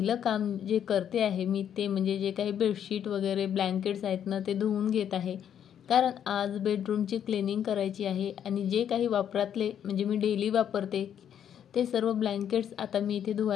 काम जे करते आहे मी ते म्हणजे जे काही बेडशीट वगैरे ब्लँकेट्स आहेत ना ते धुवून घेत आहे, कारण आज बेडरूमची क्लिनिंग करायची आहे। आणि जे काही वापरातले म्हणजे मी डेली वापरते ते सर्व ब्लँकेट्स आता मी इथे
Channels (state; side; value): quieter; right; 9.2 dB